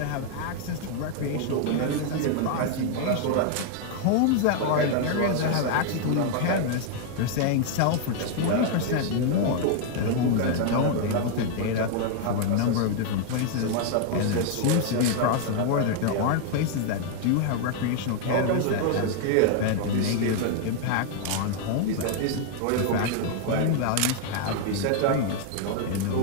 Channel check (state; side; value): different; both; correlation 0.00